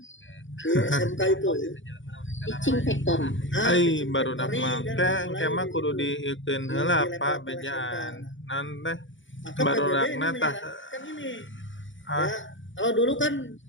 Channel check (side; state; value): right; late; 0.56 ms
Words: di SMK itu teaching factor. Baru dak mah kemah kudu diikeun heula Pak bejaan nanti baru rakna tah kan ini ya, kalau dulu kan